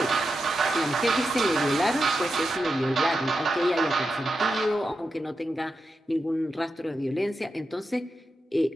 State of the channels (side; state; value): both; normal; correlation 0.89